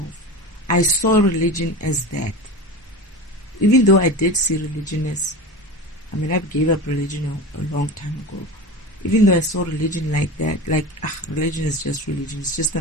I saw religion as that. Even though I did see religion as, I gave up religion a long time ago. Even though I saw religion like that, religion is just religion, it's just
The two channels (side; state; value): both; normal; correlation 0.29